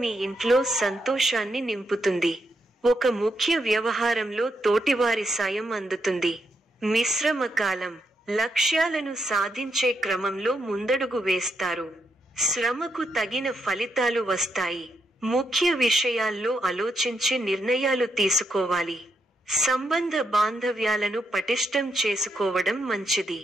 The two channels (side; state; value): both; normal; correlation 0.80